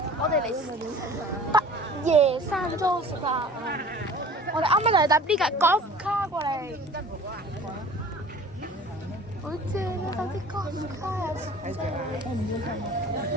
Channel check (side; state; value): both; normal; correlation 0.44